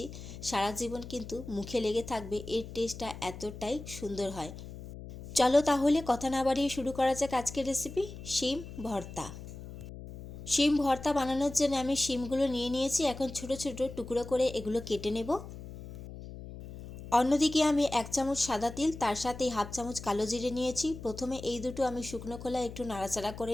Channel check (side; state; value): left; noise; hum, 12 dB below the sound